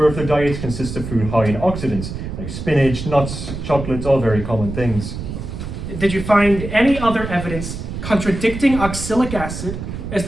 if their diets consist of food high in oxidants, like spinach, nuts, chocolates, all very common things. Did you find any other evidence contradicting oxalic acid as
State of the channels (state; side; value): noise; right; rumble, 7 dB below the sound